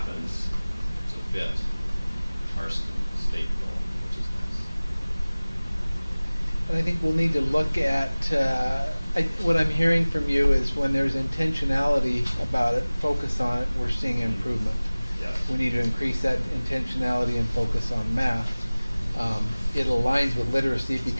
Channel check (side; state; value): both; inverted; correlation -1.00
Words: to fit our state goal, which is nice. And I think we'll need to look at, what I'm hearing from you is when there's intentionality about it, focus on it, we're seeing improvement. Yes. We need to increase that intentionality and focus on math. It aligns with literacy